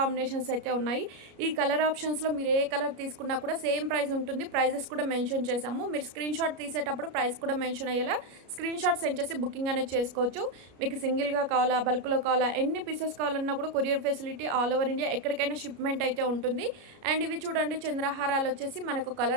అయితే ఉన్నాయి. ఈ కలర్ ఆప్షన్స్లో మీరు ఏ కలర్ తీసుకున్నా కూడా సేమ్ ప్రైస్ ఉంటుంది. ప్రైజెస్ కూడా మెన్షన్ చేసాము. మీరు స్క్రీన్ షాట్ తీసేటప్పుడు ప్రైస్ కూడా మెన్షన్ అయ్యేలా స్క్రీన్ షాట్ సెండ్ చేసి బుకింగ్ అనేది చేసుకోవచ్చు. మీకు సింగిల్గా కావాలా, బల్క్లో కావాలా, ఎన్ని పీసెస్ కావాలన్నా కూడా courier facility all over India ఎక్కడికైనా షిప్మెంట్ అయితే ఉంటుంది. అండ్ ఇవి చూడండి, చంద్రహారాలు వచ్చేసి మనకు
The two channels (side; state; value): left; late; 33 ms